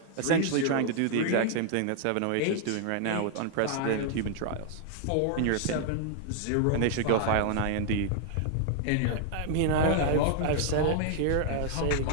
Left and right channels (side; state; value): both; different; correlation 0.00